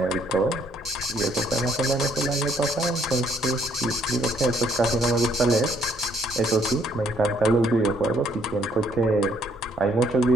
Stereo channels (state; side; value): normal; both; correlation 0.66